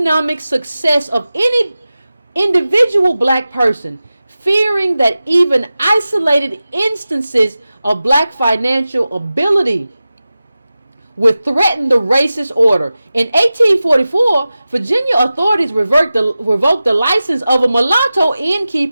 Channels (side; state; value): both; inverted; correlation -0.95